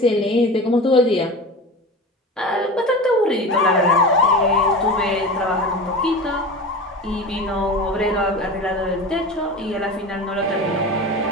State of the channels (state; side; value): normal; both; correlation 0.31